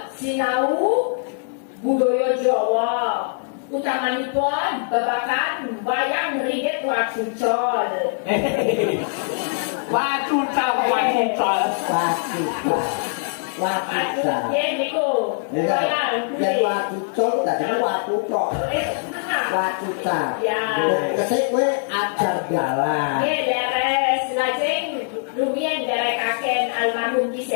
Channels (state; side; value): silent; right; 64 dB below the other